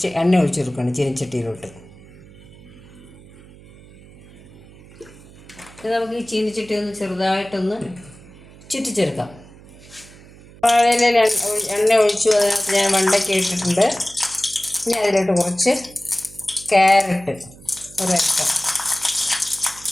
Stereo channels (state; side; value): noise; right; hum, 21 dB below the sound